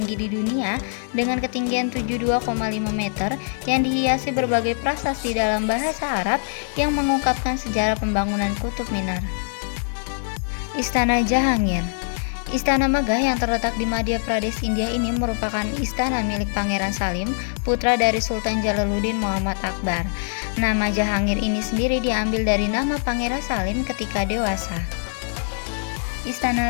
di dunia dengan ketinggian 72,5 meter yang dihiasi berbagai prasasti dalam bahasa Arab yang mengungkapkan sejarah pembangunan Kutub Minar. Istana Jahangir. Istana megah yang terletak di Madhya Pradesh, India ini merupakan istana milik Pangeran Salim, putra dari Sultan Jalaluddin Muhammad Akbar. Nama Jahangir ini sendiri diambil dari nama Pangeran Salim ketika dewasa.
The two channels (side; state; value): right; silent; 63 dB below the other